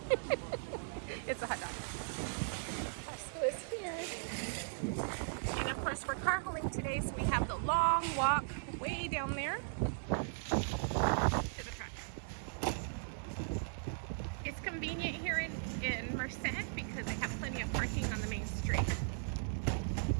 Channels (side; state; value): left; silent; digital silence